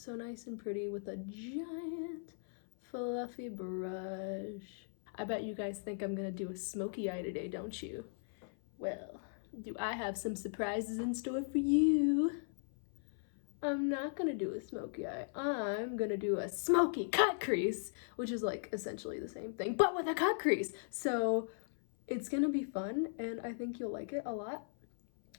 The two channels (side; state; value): right; silent; 53 dB below the other